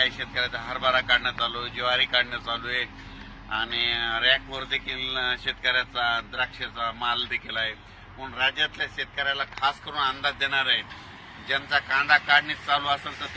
शेतकऱ्याचा हरभरा काढणं चालू आहे, ज्वारी काढणं चालू आहे आणि रॅकवर देखील शेतकऱ्याचा द्राक्षाचा माल देखील आहे. म्हणून राज्यातल्या शेतकऱ्याला खास करून अंदाज देणार आहे. ज्यांचा कांदा काढणी चालू असेल तर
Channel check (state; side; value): identical; both; correlation 1.00